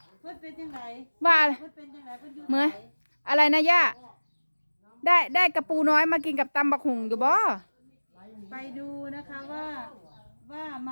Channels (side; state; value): both; inverted; correlation -1.00